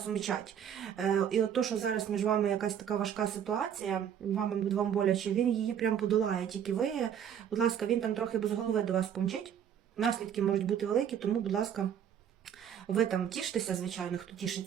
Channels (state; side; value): quieter; left; 8.9 dB